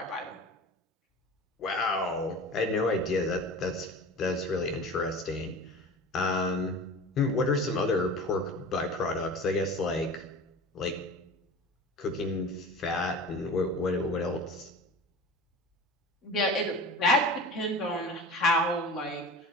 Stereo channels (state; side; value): normal; both; correlation 0.35